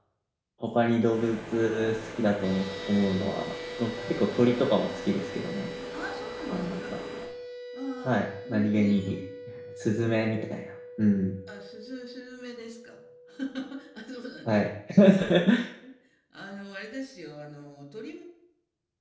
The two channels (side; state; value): both; identical; correlation 1.00